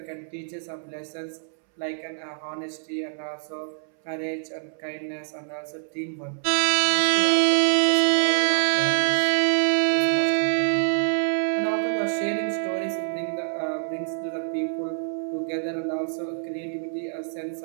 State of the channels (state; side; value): silent; left; 61 dB below the other